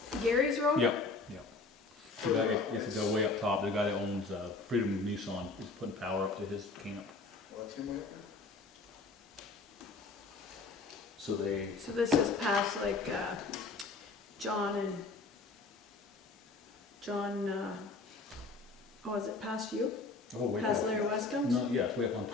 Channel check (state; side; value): quieter; right; 3.8 dB